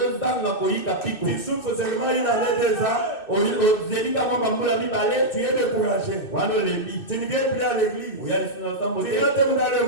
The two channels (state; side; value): late; right; 2.6 ms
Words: souffres seulement une année, 2 ans. Tu es découragé. Tu ne viens plus à l'église. Tu rentres dans le